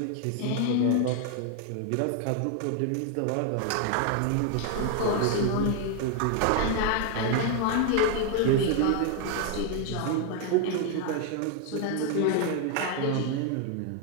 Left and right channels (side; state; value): both; different; correlation 0.00